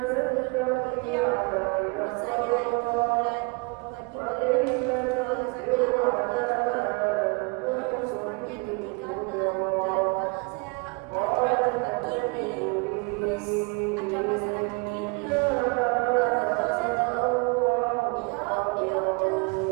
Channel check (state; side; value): quieter; left; 31.5 dB